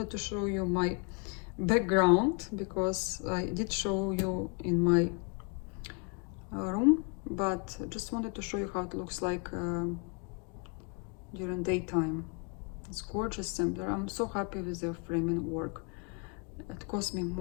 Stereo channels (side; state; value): right; quieter; 35.2 dB